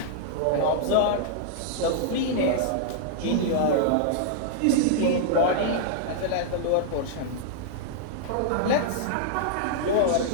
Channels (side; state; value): both; different; correlation -0.01